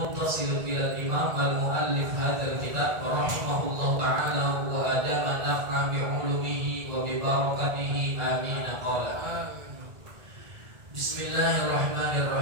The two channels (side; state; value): left; late; 1.8 ms